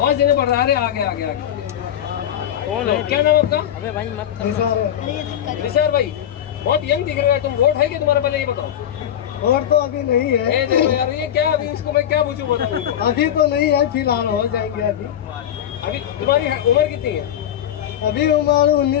देने पड़ रहा है। आगे आगे आगे कौन है? क्या नाम आपका? अबे भाई मत निसार भाई, बहुत यंग दिख रहा है तुम। वोट है कि तुम्हारा? पहले ये बताओ। वोट तो अभी नहीं है। देखो यार ये क्या, अभी इसको मैं क्या पूछूं बताऊं? अभी तो नहीं है, फिलहाल हो जाएंगे। अभी तुम्हारी उम्र कितनी है? अभी उम्र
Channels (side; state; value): right; quieter; 10.4 dB